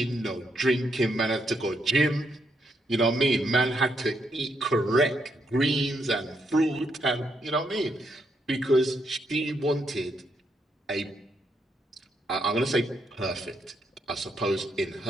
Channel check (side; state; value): both; normal; correlation 0.78